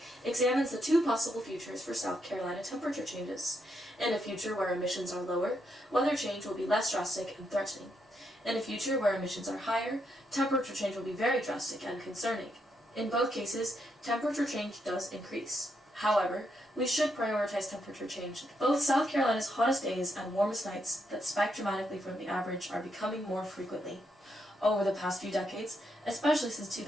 examines the two possible futures for South Carolina temperature changes. In a future where emissions are lower, weather change will be less drastic and threatening. In a future where emissions are higher, temperature change will be very drastic and concerning. In both cases, temperature change does increase. However, we should prioritize temperature change. Both South Carolina's hottest days and warmest nights that spike dramatically from the average are becoming more frequently. Over the past few decades, especially since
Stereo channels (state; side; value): normal; both; correlation 0.79